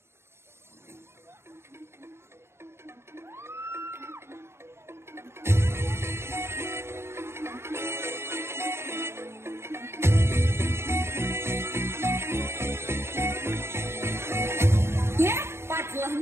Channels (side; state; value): left; late; 0.12 ms